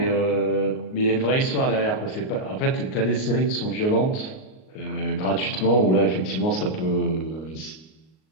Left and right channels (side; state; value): right; late; 38 ms